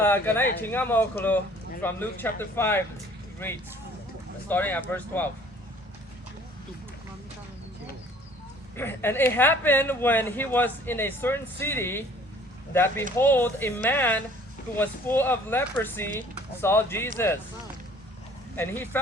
from Luke chapter 5 reads, starting at verse 12. And it happened when he was in a certain city that behold, a man who was full of leprosy saw Jesus. And he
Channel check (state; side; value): normal; both; correlation 0.53